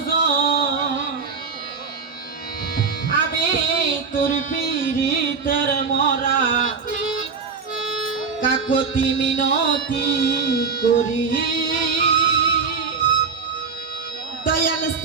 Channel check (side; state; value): left; quieter; 5.3 dB